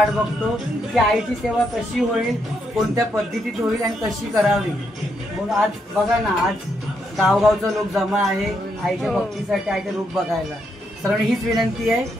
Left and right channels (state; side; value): normal; both; correlation 0.78